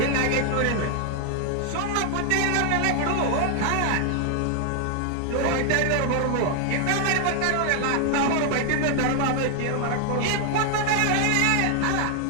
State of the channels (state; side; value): different; both; correlation 0.00